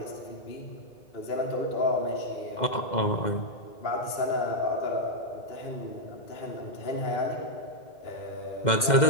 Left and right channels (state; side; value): late; right; 2.0 ms